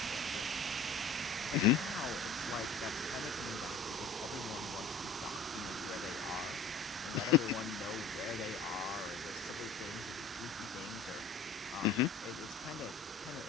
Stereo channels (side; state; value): right; quieter; 4.2 dB